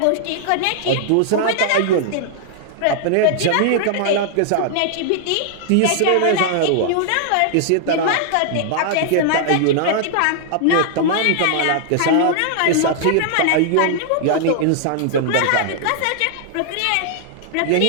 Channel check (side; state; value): both; different; correlation -0.01